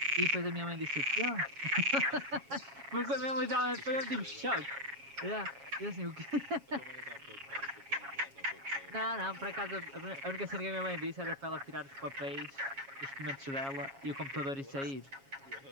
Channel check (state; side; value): late; left; 7.3 ms